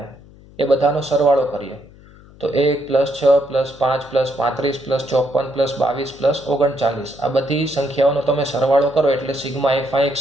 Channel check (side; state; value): left; noise; hum, 23 dB below the sound